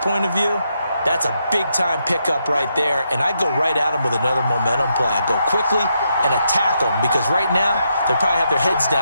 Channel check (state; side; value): inverted; both; correlation -0.80